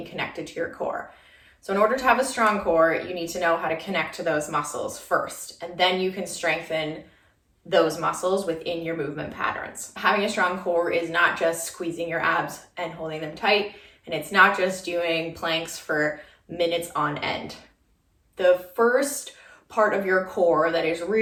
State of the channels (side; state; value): both; identical; correlation 1.00